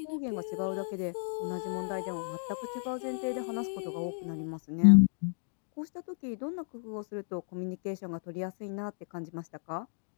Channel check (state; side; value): silent; right; digital silence